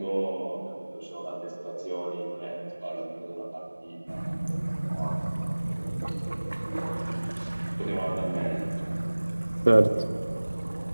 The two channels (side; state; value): both; inverted; correlation -1.00